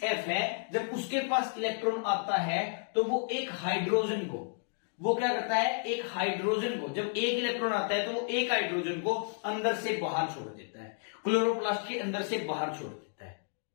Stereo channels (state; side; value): silent; right; digital silence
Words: है, जब उसके पास इलेक्ट्रॉन आता है तो वो एक हाइड्रोजन को, वो क्या करता है, एक हाइड्रोजन को, जब एक इलेक्ट्रॉन आता है तो वो एक हाइड्रोजन को अंदर से बाहर छोड़ देता है, क्लोरोप्लास्ट के अंदर से बाहर छोड़ देता है।